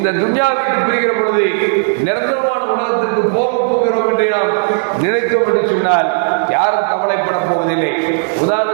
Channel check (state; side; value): silent; left; digital silence